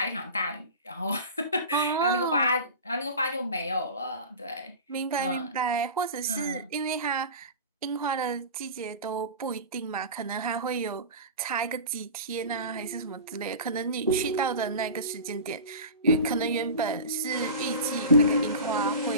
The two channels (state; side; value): inverted; both; correlation -0.32